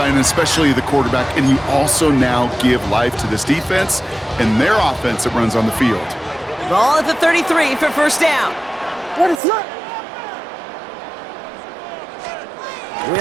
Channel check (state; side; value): drops out; left; at 9.3 s